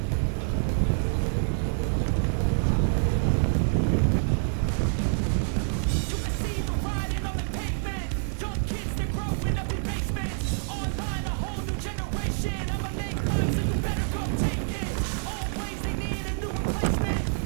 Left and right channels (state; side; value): silent; left; digital silence